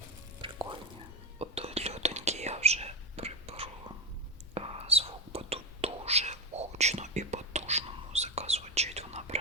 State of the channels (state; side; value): normal; both; correlation 0.14